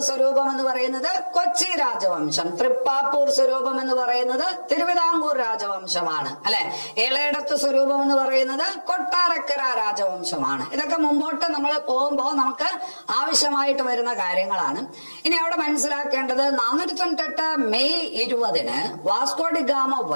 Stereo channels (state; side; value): inverted; both; correlation -1.00